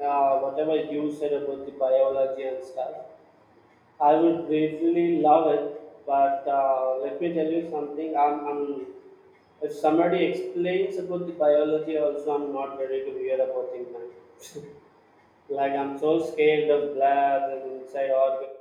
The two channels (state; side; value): identical; both; correlation 1.00